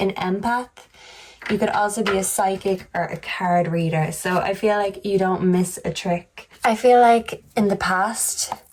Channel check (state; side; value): identical; both; correlation 1.00